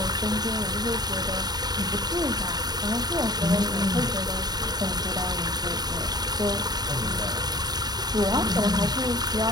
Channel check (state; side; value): late; left; 0.20 ms